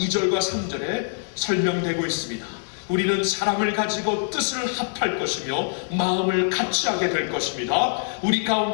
3절에 설명되고 있습니다. 우리는 사랑을 가지고 뜻을 합할 것이며 마음을 같이 하게 될 것입니다. 우리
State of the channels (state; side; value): silent; right; digital silence